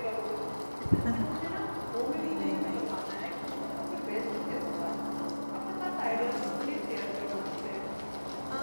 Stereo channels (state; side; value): inverted; both; correlation -1.00